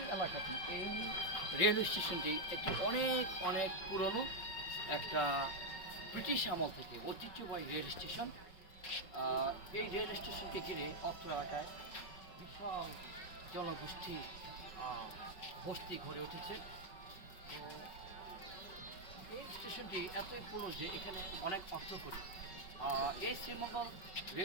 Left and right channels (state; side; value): late; right; 5.2 ms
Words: এলাকাটি, এই railway স্টেশনটি একটি অনেক পুরনো একটা ব্রিটিশ আমল থেকে ঐতিহ্যবাহী রেল স্টেশন। এই রেল স্টেশনকে ঘিরে অত্র এলাকায় বিশাল জনগোষ্ঠী বস্তি গড়ে উঠেছে। তো এই স্টেশনটি এতই পুরনো যে এখানে অনেক অর্থ করি। এই শ্রীমঙ্গল